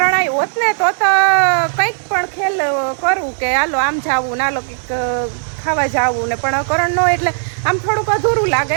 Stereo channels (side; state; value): left; silent; 69 dB below the other